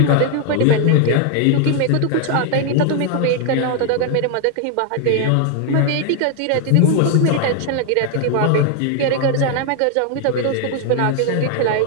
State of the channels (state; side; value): different; both; correlation 0.00